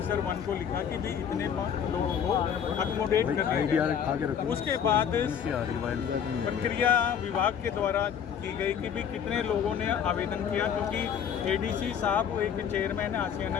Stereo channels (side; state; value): right; quieter; 8.2 dB